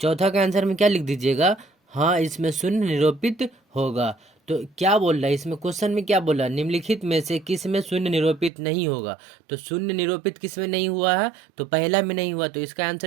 का आंसर में क्या लिख दीजिएगा, हाँ इसमें शून्य निरूपित होगा। तो क्या बोल रहा है इसमें, क्वेश्चन में क्या बोला, निम्नलिखित में से किस में शून्य निरूपित नहीं होगा। तो शून्य निरूपित किस में नहीं हुआ है, तो पहला में नहीं हुआ, तो इसका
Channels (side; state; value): left; drops out; at 8.5 s